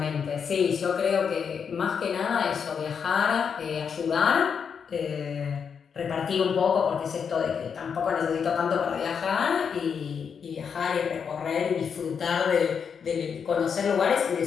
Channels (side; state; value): right; quieter; 6.7 dB